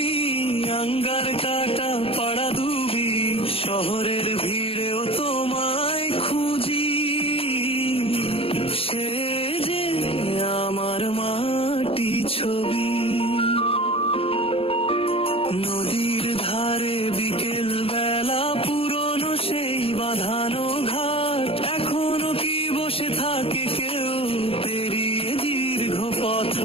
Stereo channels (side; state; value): right; late; 0.27 ms